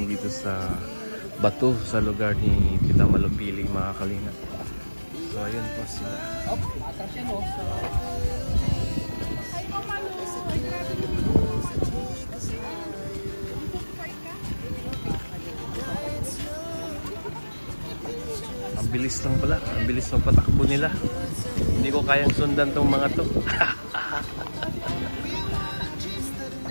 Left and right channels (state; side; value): inverted; both; correlation -1.00